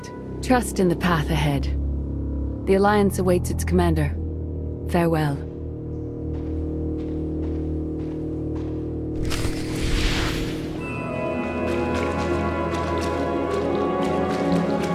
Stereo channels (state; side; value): identical; both; correlation 1.00